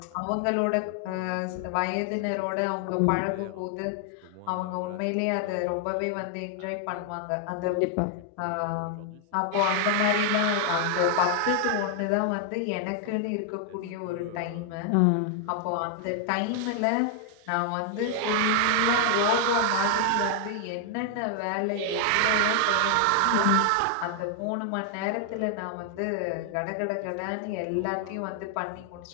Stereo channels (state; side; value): different; both; correlation 0.00